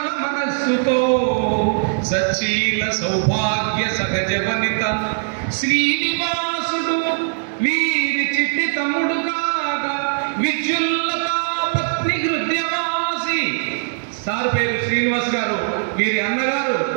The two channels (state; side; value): silent; left; digital silence